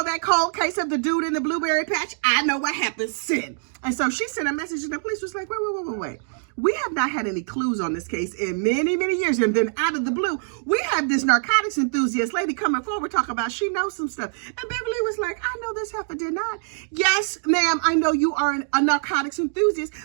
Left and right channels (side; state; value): left; silent; digital silence